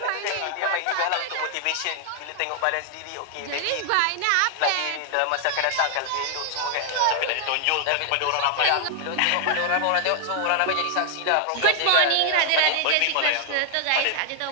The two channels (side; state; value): both; different; correlation 0.00